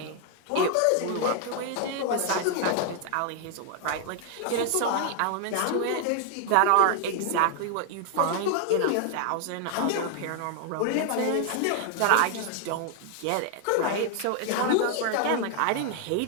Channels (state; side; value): different; both; correlation 0.00